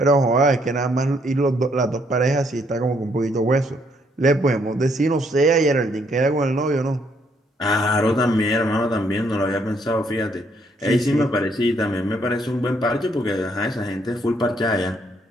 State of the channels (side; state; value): both; normal; correlation 0.70